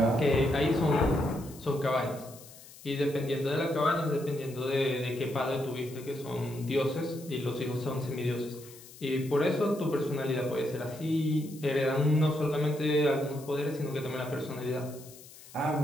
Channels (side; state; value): left; noise; hiss, 19 dB below the sound